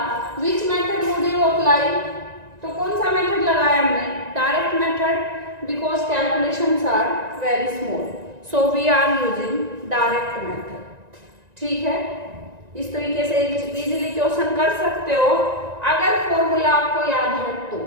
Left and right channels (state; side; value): late; left; 1.9 ms